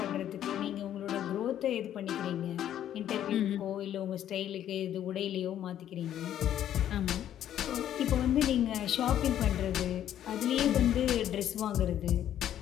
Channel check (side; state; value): right; quieter; 11.0 dB